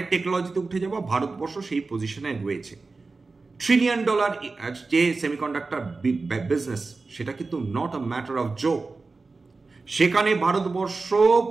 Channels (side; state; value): left; quieter; 3.9 dB